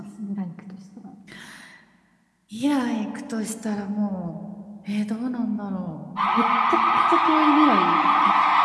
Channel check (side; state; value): both; identical; correlation 1.00